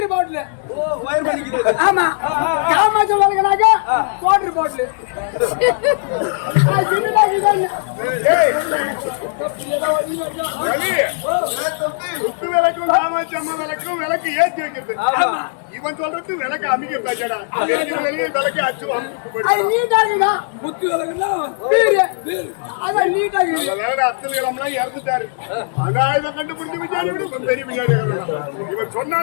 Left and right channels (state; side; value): silent; right; digital silence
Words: பாட்டில் வயர் பண்ணிக்கிட்டு ஆமா காமாட்சி வாழ்க்கைனாக்க வாட்டர் பாட்டில் குத்து விளக்கும் காமாட்சி அம்மா விளக்கும் விளக்கு ஏற்றி வைக்கிறது இவன் சொல்றது விளக்கு அமைக்க பேச்சடா வெளியே விளக்கு அச்சு அமுச்சு போயிட்டு நீட்டா இருக்குதா குத்து வழக்குன்னா பீர் அதான் நீட்டா இருக்குது வேற அப்துல் கலாம்லாம் இறந்துட்டாரு ஆனா இதை கண்டுபிடிச்சு விசாரி விடு பெரிய விசாரி இவன்